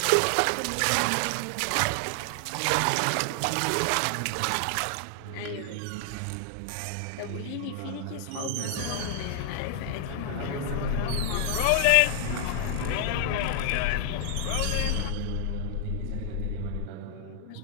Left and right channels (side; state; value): both; different; correlation 0.00